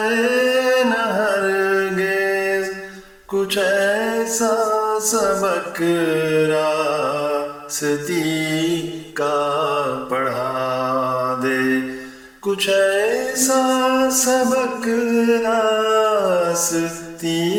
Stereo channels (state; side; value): identical; both; correlation 1.00